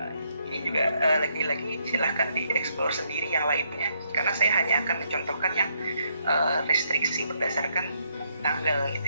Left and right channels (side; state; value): both; inverted; correlation -0.74